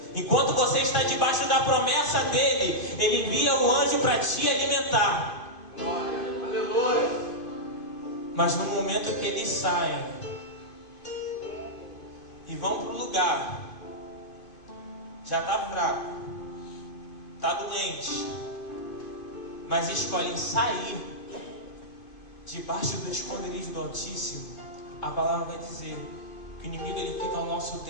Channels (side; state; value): right; late; 2.5 ms